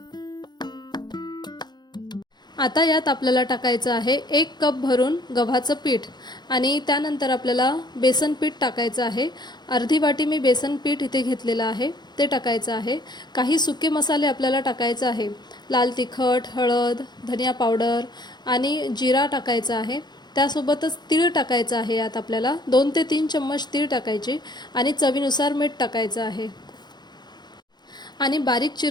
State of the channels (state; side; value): late; right; 0.21 ms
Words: आता यात आपल्याला टाकायचं आहे 1 कप भरून गव्हाचं पीठ आणि त्यानंतर आपल्याला बेसन पीठ टाकायचं आहे। अर्धी वाटी मी बेसन पीठ इथे घेतलेलं आहे ते टाकायचं आहे। काही सुके मसाले आपल्याला टाकायचे आहे, लाल तिखट, हळद, धनिया पावडर आणि जिरा टाकायचा आहे। त्यासोबतच तीळ टाकायचं आहे। यात आपल्याला 2 ते 3 चम्मच तीळ टाकायचे आणि चवीनुसार मीठ टाकायचं आहे आणि बारीक